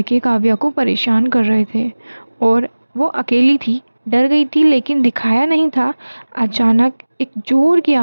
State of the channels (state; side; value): inverted; both; correlation -1.00